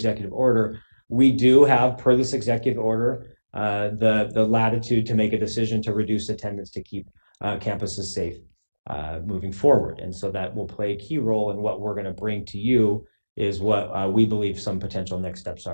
order, we do have, per this executive order, the latitude to make a decision to reduce attendance to keep campuses safe moving forward. And so that will play a key role in what we're going to bring to you is what we believe some potential next steps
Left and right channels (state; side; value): inverted; both; correlation -1.00